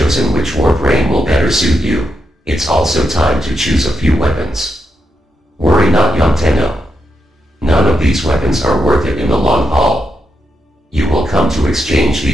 which Warframe will better suit you, it's also time to choose a few weapons. Worry not, young Tenno. None of these weapons are worth it in the long haul. You will come to exchange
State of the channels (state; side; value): normal; both; correlation 0.83